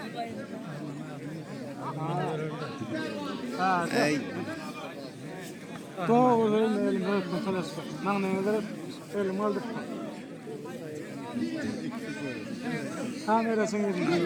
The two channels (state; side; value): identical; both; correlation 1.00